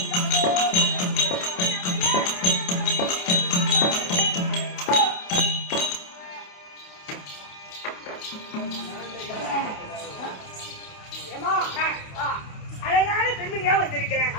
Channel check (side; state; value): right; late; 28 ms